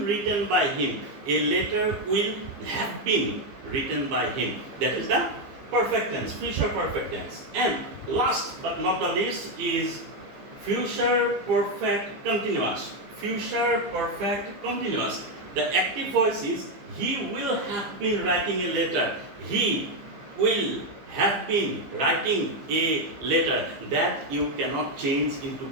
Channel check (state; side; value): late; left; 15 ms